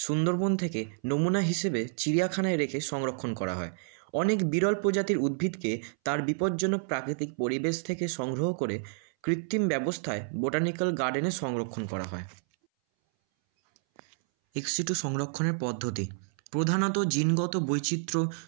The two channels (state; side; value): silent; left; 58 dB below the other